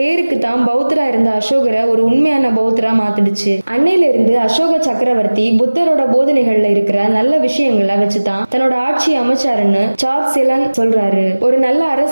தான் பௌத்தரா இருந்த அசோகரை ஒரு உண்மையான பௌத்தரா மாத்திடுச்சு. அன்னையில இருந்து அசோக சக்கரவர்த்தி புத்தரோட போதனைகள்ல இருக்கிற நல்ல விஷயங்களை வச்சுதான் தன்னோட ஆட்சி அமைச்சாருன்னு சார்ல்ஸ் எலன் சொல்றாரு. ஒரு நல்ல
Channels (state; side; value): inverted; both; correlation -1.00